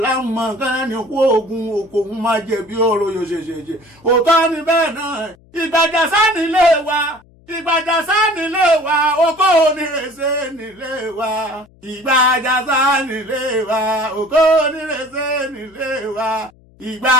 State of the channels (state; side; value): noise; left; hum, 29 dB below the sound